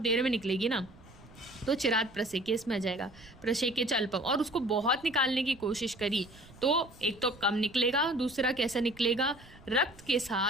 में निकलेगी ना, तो चिराग प्रसेके इसमें आ जाएगा। प्रसेके चल्पम, और उसको बहुत निकालने की कोशिश करी तो एक तो कम निकलेगा, दूसरा कैसा निकलेगा, रक्त के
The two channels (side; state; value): right; noise; rumble, 22 dB below the sound